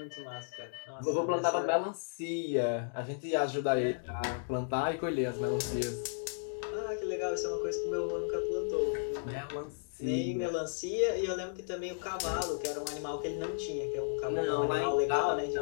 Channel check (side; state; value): right; silent; digital silence